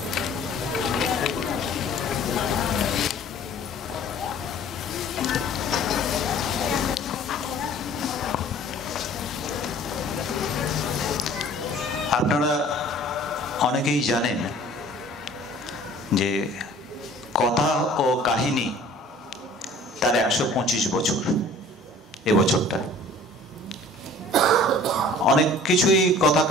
আপনারা অনেকেই জানেন যে কথা ও কাহিনী তার 125 বছর এবছরটা। অনেক কিছুই কথা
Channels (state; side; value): normal; both; correlation 0.49